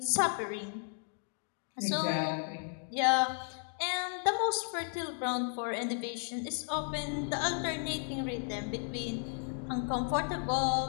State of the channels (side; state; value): right; silent; 55 dB below the other